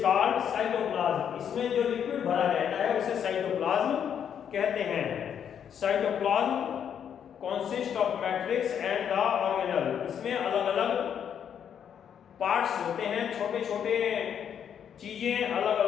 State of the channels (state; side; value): quieter; right; 8.5 dB